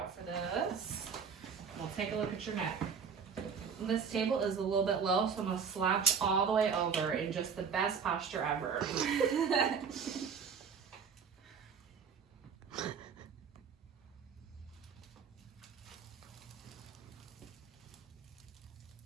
for this. We'll take a look at your neck. This table is a little bit low, so I'm going to slouch all the way over in just the best posture ever.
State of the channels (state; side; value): quieter; left; 6.4 dB